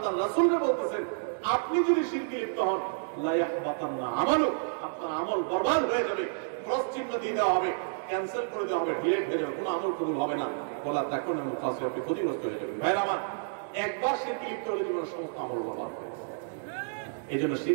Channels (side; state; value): left; silent; digital silence